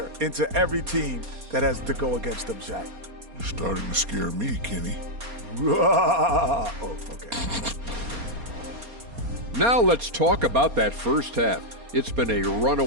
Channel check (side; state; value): left; late; 4.2 ms